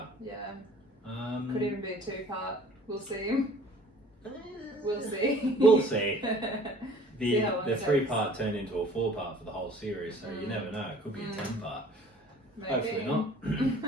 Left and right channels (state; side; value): normal; both; correlation 0.50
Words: Yeah. Could even be a 2-part. We'll see. We'll see. The 3-part turned into a 4-part for the whole series, so you never know. It could be a 10-part. Hopefully not.